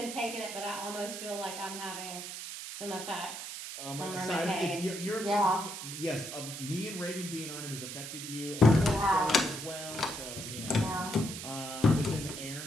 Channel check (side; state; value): right; noise; hiss, 8 dB below the sound